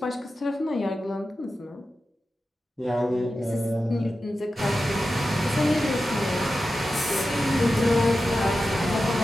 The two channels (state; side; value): normal; both; correlation 0.92